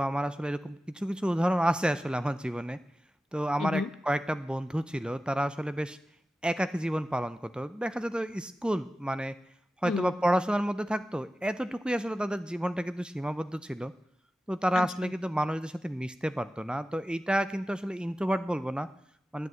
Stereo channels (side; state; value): both; normal; correlation 0.94